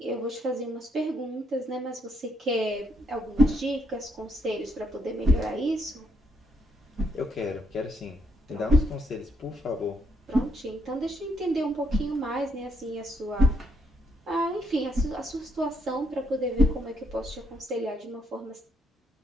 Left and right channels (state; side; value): normal; both; correlation 0.73